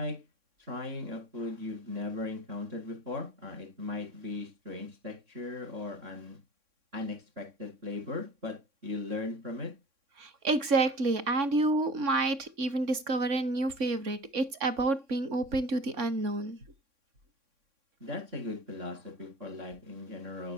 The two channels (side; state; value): left; late; 3.6 ms